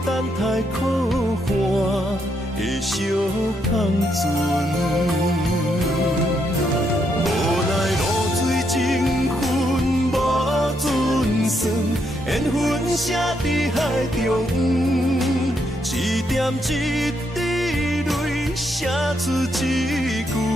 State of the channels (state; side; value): normal; both; correlation 0.77